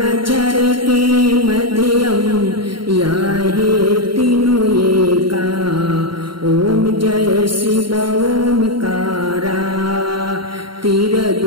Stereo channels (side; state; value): left; late; 0.73 ms